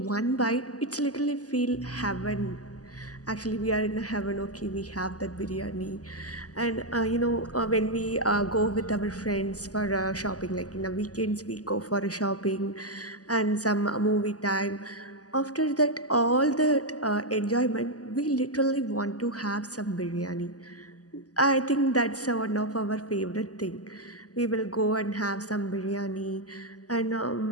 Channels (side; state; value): right; late; 0.67 ms